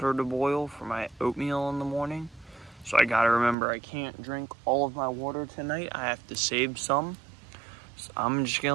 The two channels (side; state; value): left; drops out; at 3.6 s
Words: to boil for my oatmeal in the morning. So I gotta remember I can't drink all of my water tonight. I have to save some. So I'm just